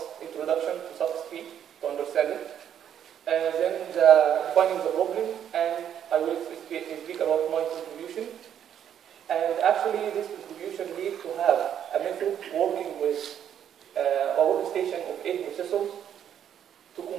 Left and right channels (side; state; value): left; quieter; 9.5 dB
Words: introduction to Suffix to understand it, then defining the problem, and I will speak about my contribution. And actually, this contribution leads to have a method working with a workstation of 8 processors to